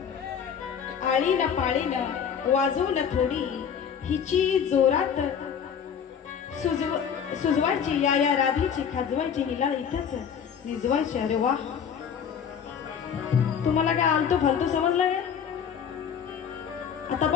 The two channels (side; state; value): right; quieter; 7.6 dB